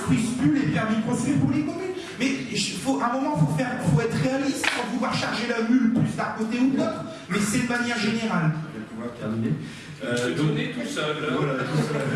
plus les permis de construire pour les communes. Mais à un moment, il faut être réaliste sans vouloir charger la mule plus d'un côté ou de l'autre, mais c'est de manière générale. Je vais pouvoir terminer. Donner tout seul. Voilà, tout seul.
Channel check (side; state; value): both; identical; correlation 1.00